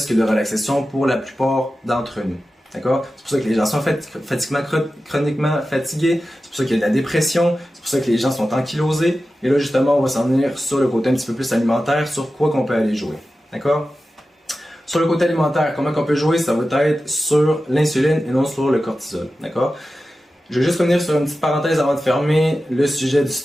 que de relaxation pour la plupart d'entre nous, d'accord? C'est pour ça que les gens sont chroniquement fatigués, c'est pour ça qu'il y a de la dépression, c'est pour ça que les gens sont ankylosés, et là, justement, on va s'en venir sur le côté un petit peu plus alimentaire, sur quoi qu'on peut aller jouer, d'accord? Sur le côté alimentaire, comment on peut jouer, ça va être sur l'insuline et non sur le cortisol, d'accord? Je vais juste revenir sur une petite parenthèse avant de fermer le sujet du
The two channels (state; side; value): normal; both; correlation 0.93